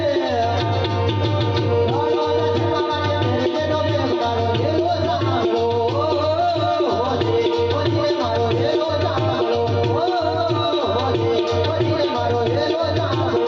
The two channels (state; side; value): identical; both; correlation 1.00